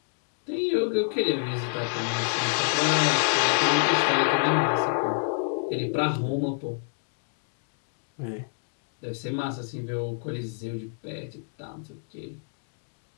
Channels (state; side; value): silent; right; digital silence